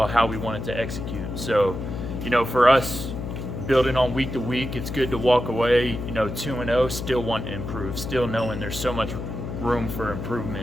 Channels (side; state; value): left; noise; hum, 6 dB below the sound